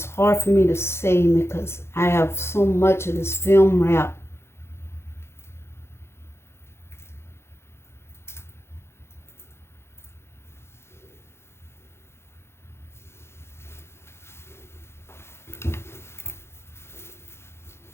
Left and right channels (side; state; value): right; late; 0.12 ms